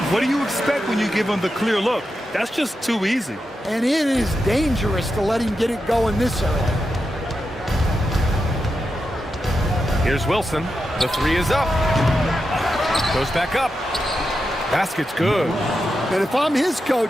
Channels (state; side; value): normal; both; correlation 0.88